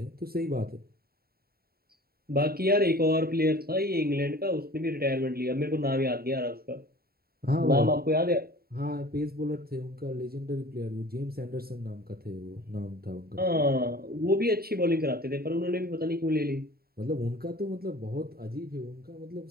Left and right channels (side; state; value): left; late; 0.45 ms